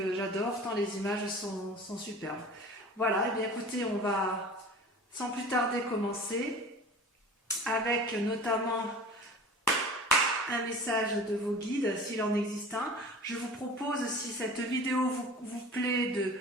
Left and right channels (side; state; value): both; normal; correlation 0.40